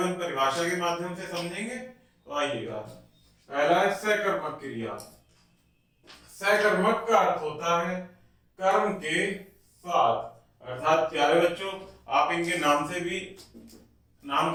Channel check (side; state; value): both; identical; correlation 1.00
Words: परिभाषा के माध्यम से समझेंगे। तो आइएगा, पहला है सकर्मक क्रिया। सकर्मक का अर्थ होता है कर्म के साथ, अर्थात प्यारे बच्चों आप इनके नाम से भी, नाम